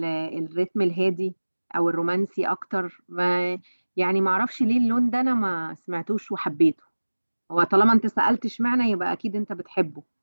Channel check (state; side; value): inverted; both; correlation -1.00